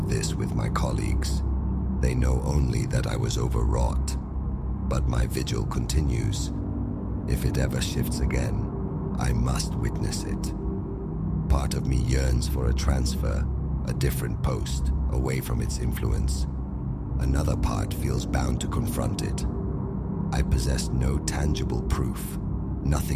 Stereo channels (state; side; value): identical; both; correlation 1.00